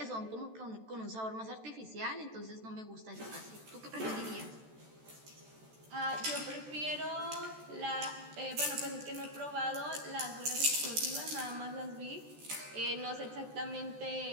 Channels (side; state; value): left; late; 14 ms